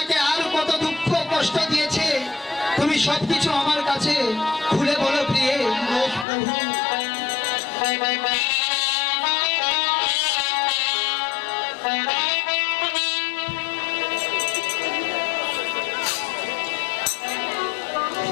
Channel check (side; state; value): right; drops out; at 6.2 s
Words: আর কত দুঃখ কষ্ট দিয়েছে তুমি সবকিছু আমার কাছে খুলে বলো প্রিয়ে। বেশ প্রভু।